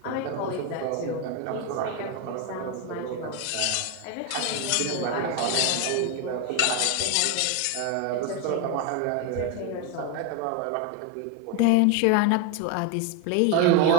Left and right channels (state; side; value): different; both; correlation 0.02